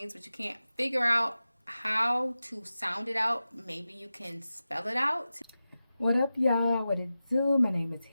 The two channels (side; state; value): both; inverted; correlation -0.94